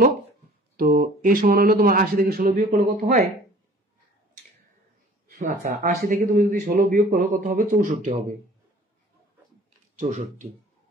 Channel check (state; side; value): normal; both; correlation 0.49